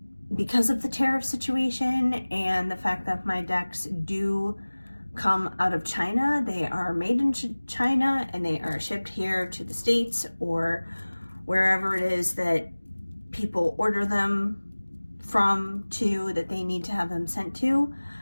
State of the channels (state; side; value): inverted; both; correlation -1.00